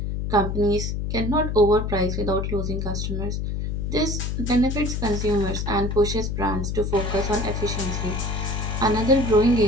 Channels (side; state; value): left; noise; hum, 2 dB below the sound